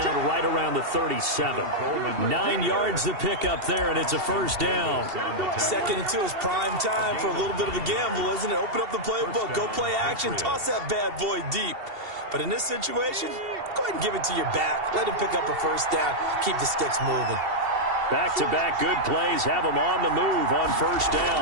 right around the 37. 9 yards to pick up there, and it's a first down. 2nd and 2 is prime time for a little bit of a gamble, isn't it? Open up the playbook, go play action, toss that bad boy deep. But in this situation, go ahead and give it to your back. Let him pick up a first down. Keep the sticks moving. Back-to-back good plays have them on the move on first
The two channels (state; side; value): late; left; 2.7 ms